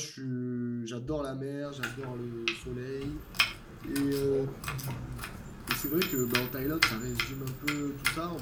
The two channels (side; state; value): both; identical; correlation 1.00